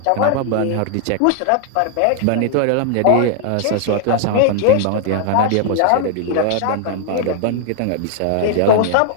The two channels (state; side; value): different; both; correlation -0.01